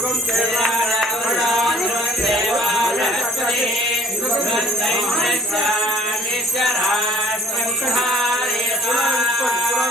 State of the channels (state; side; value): normal; both; correlation 0.58